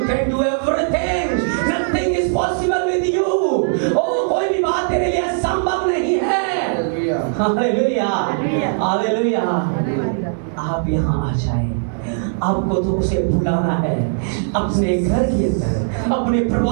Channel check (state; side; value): silent; left; 65 dB below the other